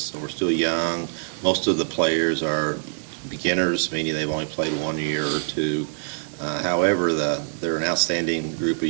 we're still young. Most of the players are beginners, meaning they've only played 1 year or two. However, they're an outstanding group of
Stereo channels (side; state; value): left; silent; 62 dB below the other